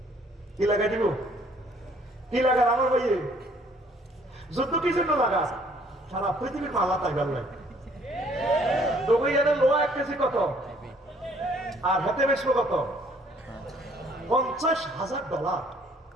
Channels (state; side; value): normal; both; correlation 0.61